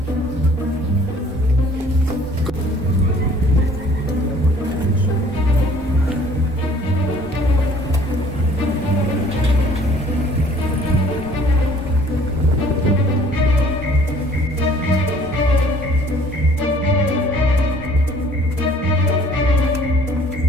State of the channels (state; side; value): normal; both; correlation 0.55